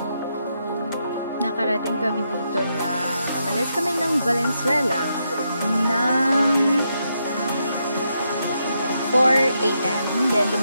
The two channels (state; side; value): inverted; both; correlation -0.81